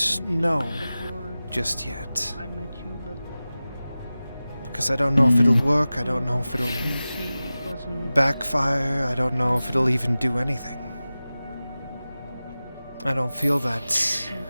know just yet. I met you, but Because I don't know if it'll work, I don't know if it'll he wasn't. backfire, I don't know if it'll even do anything. I don't feel that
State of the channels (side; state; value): both; inverted; correlation -0.96